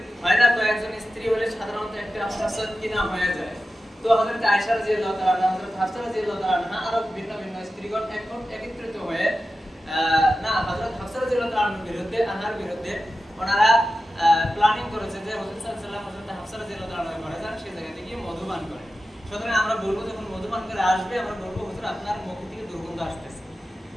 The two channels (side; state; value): both; normal; correlation 0.93